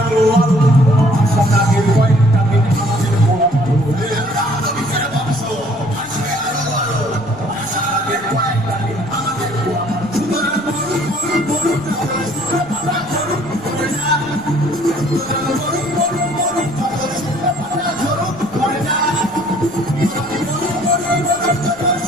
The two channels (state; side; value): noise; left; rumble, 25 dB below the sound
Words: আরো আরো, আশা নাগের কয়েকটা দিন আমাদের বরাদ্দ হয়ে। বীজের বংশ আসবে আরো আরো, আশা নাগের কয়েকটা দিন আমাদের বরাদ্দ। সুতরাং মরুক মরুক মরুক, পাতা ঝরুক পড়ে যা। সুতরাং মরুক মরুক মরুক, পাতা ঝরুক পড়ে যা। মরুক মরুক মরুক,